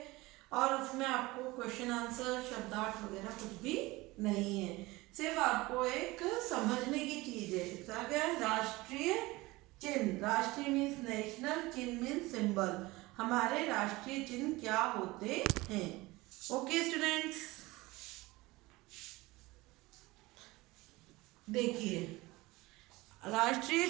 और उसमें आपको क्वेश्चन आंसर शब्दार्थ वगैरह कुछ भी नहीं है. सिर्फ आपको एक समझने की चीज है. इसका क्या है? राष्ट्रीय चिन्ह. राष्ट्रीय मीन्स नेशनल, चिन्ह मीन्स सिंबल. हमारे राष्ट्रीय चिन्ह क्या होते हैं? ओके स्टूडेंट्स, देखिए राष्ट्रीय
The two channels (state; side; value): quieter; left; 21.0 dB